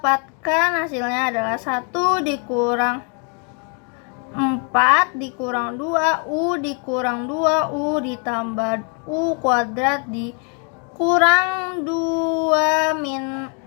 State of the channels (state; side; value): quieter; right; 36.6 dB